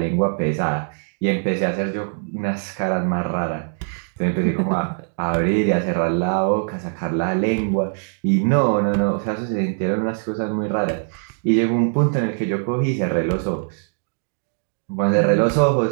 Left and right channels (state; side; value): silent; left; 64 dB below the other